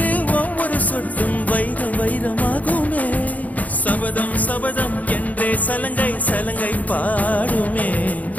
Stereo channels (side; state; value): right; late; 0.075 ms